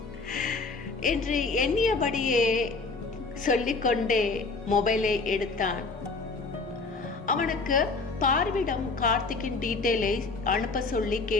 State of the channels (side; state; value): right; quieter; 3.9 dB